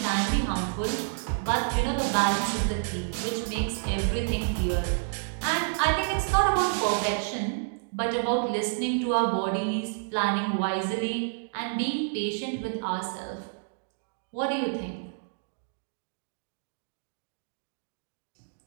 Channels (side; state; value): left; silent; digital silence